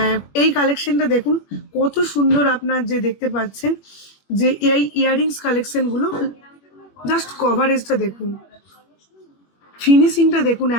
এই কালেকশনটা দেখুন কত সুন্দর, আপনার যে দেখতে পাচ্ছেন যে এই ইয়াররিংস কালেকশনগুলো, জাস্ট কভারেজটা দেখুন, ফিনিশিংটা দেখুন,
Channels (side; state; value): right; late; 21 ms